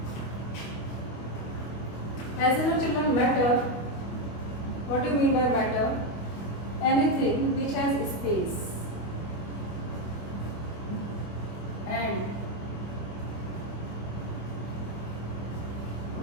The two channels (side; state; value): right; late; 25 ms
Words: As you know, children, matter, what do you mean by matter? Anything which has space and